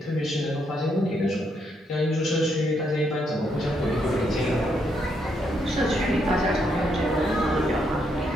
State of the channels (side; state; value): both; normal; correlation 0.76